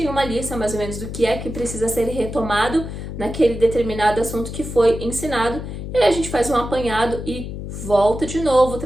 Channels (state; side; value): noise; left; hum, 8 dB below the sound